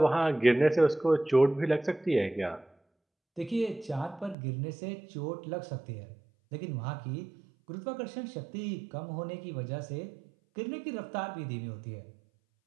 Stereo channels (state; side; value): drops out; left; at 4.4 s